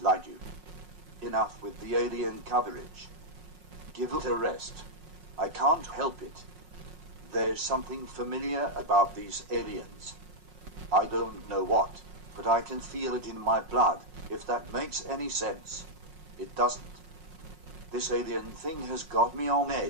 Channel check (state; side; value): late; left; 5.5 ms